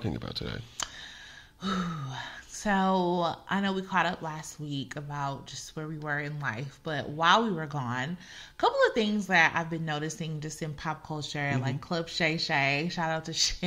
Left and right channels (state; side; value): identical; both; correlation 1.00